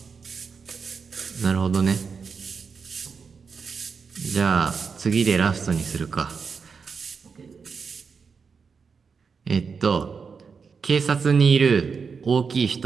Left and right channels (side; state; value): left; quieter; 5.6 dB